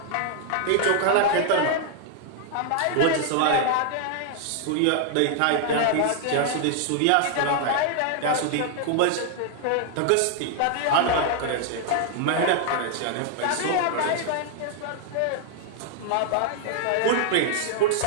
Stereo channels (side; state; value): both; different; correlation 0.00